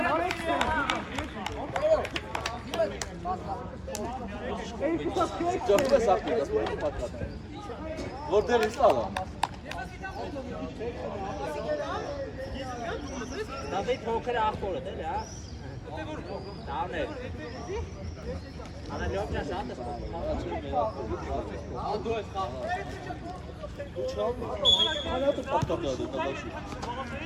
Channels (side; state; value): both; identical; correlation 1.00